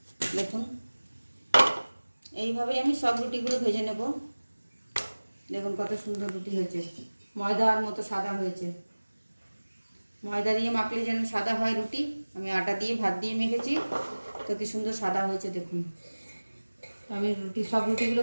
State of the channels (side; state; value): both; inverted; correlation -1.00